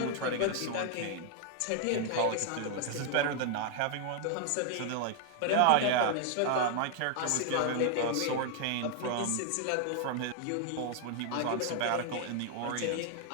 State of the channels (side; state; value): both; different; correlation 0.00